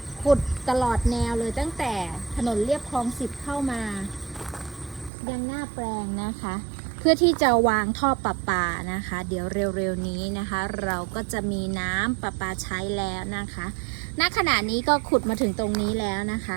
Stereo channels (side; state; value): left; drops out; at 5.1 s